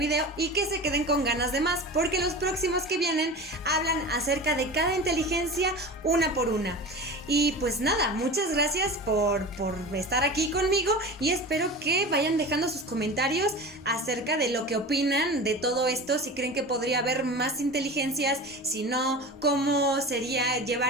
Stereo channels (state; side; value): normal; both; correlation 0.32